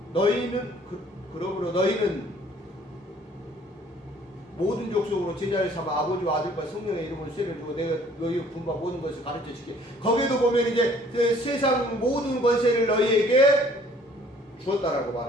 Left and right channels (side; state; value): both; normal; correlation 0.57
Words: 너희는 모든 족속으로 제자를 삼아 아버지와 아들과 성령의 이름으로 세를 주고 내가 너희 분바 모든 것을 가르쳐 주게. 거기에도 보면 이제 세상 모든 권세를 너희에게 주었다라고